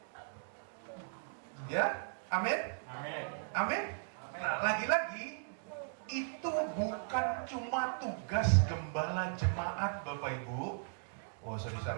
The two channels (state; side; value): silent; left; digital silence